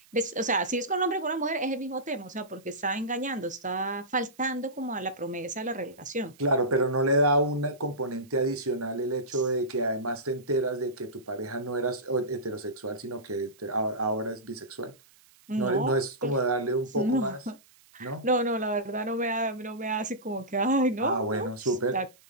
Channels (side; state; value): right; noise; hiss, 28 dB below the sound